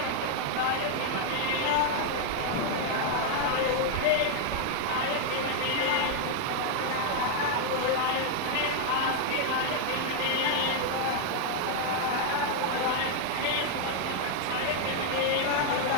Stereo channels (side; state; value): both; different; correlation 0.00